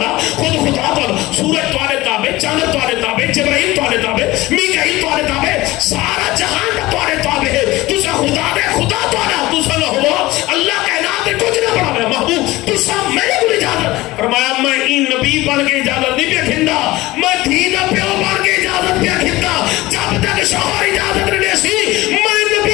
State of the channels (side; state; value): right; quieter; 18.9 dB